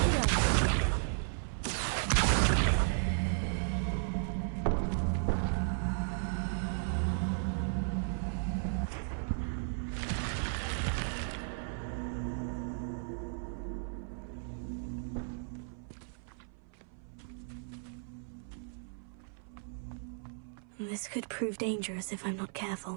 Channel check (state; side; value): silent; left; 54 dB below the other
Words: This could prove dangerous if I'm not